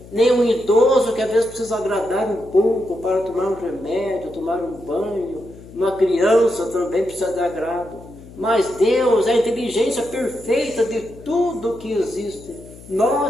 nem um idoso que às vezes precisa agradar um pouco para tomar um remédio, tomar um banho. Uma criança também precisa de agrado. Mas Deus é a inteligência perfeita de tudo que existe.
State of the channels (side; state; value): left; noise; hum, 19 dB below the sound